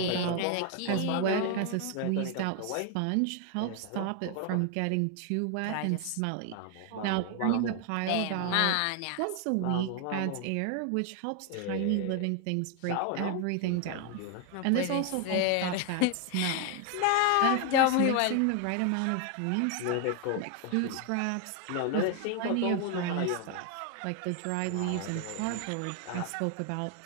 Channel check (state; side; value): different; both; correlation 0.00